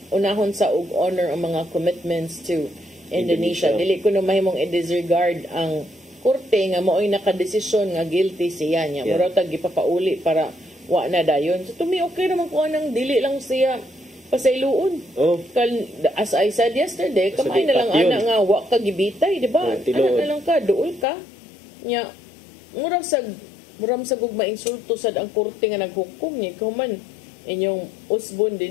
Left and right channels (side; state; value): right; drops out; at 21.1 s